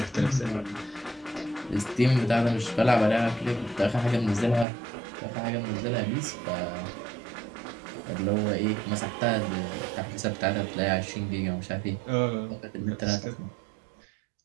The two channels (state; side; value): drops out; left; at 4.7 s